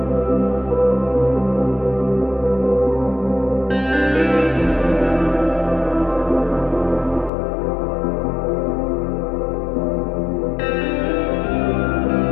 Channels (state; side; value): drops out; right; at 7.3 s